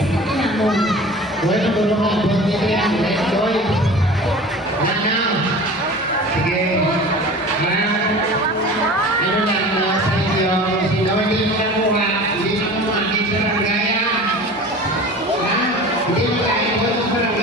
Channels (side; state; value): both; normal; correlation 0.39